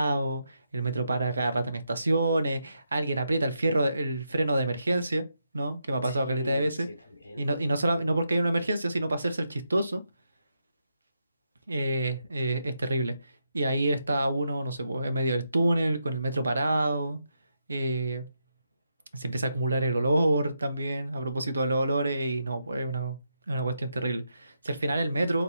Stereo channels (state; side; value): inverted; both; correlation -0.83